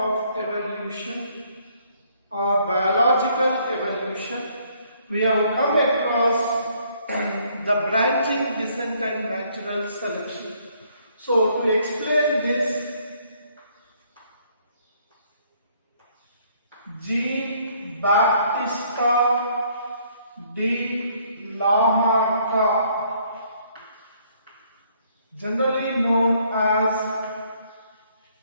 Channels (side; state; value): both; inverted; correlation -0.65